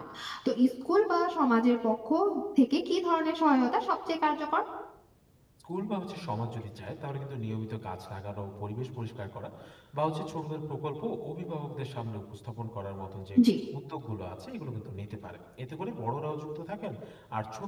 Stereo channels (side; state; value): both; identical; correlation 1.00